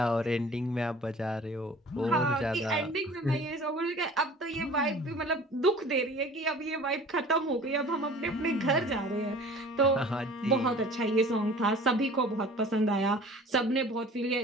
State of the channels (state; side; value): normal; both; correlation 0.45